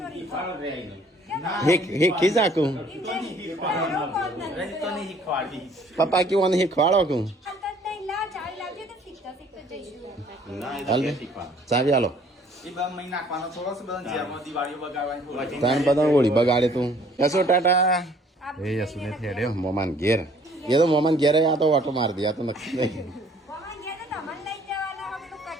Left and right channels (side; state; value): both; normal; correlation 0.58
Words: ખીજાકું પપ્પા કેવું શીખવાડો કું ચાવી આલો ત્રણ બધા ઓળી બગાડે તું યશો ટાટા એ યશુ ને થેડ્યો મોમાન ઘેર એ તો મોમાન ઘેર આ તો ઓટો મારી દે આ તો નક્કી નહીં